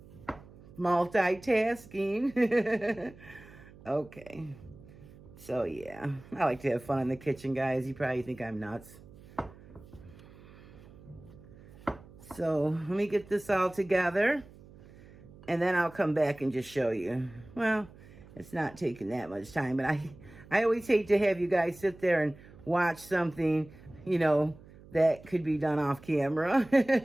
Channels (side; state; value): right; noise; hum, 21 dB below the sound